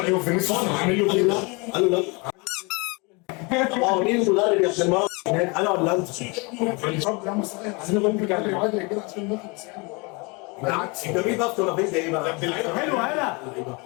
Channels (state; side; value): quieter; right; 29.1 dB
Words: فينيسيوس عامل له كده. قالوا لا. طب مين المدرب يا ابن المرة هناك، انا ولا انت؟ عايزين نقول كده عشان نخلص يعني. بالعكس انت مين بقى ولا فين ايه بقى؟ حلو هلا